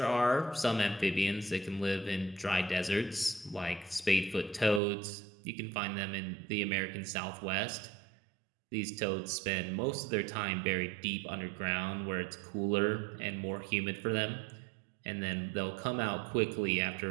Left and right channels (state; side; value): drops out; left; at 4.8 s